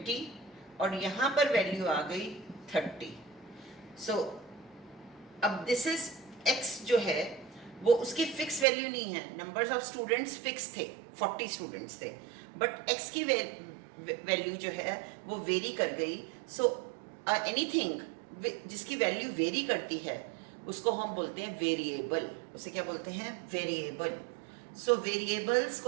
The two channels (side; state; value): left; drops out; at 8.7 s